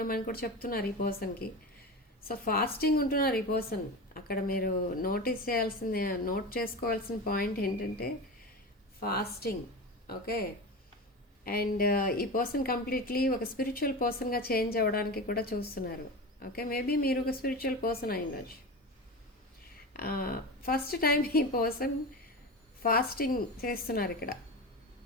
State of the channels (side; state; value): both; normal; correlation 0.25